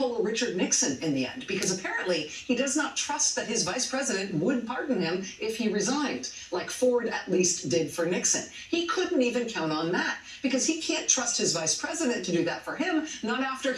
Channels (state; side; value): identical; both; correlation 1.00